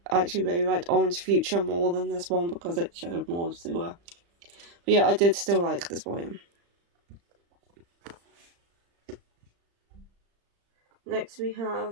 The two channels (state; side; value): late; left; 35 ms